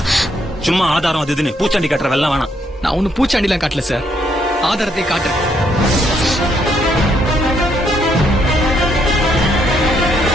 சும்மா ஆதாரம் அது இதுன்னு பூச்சாண்டி கட்டுற வெள்ளம் வேணாம். நான் ஒன்னும் பூச்சாண்டிலாம் காட்டல சார். ஆதாரத்தை காட்டுறேன்.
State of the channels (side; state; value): both; normal; correlation 0.72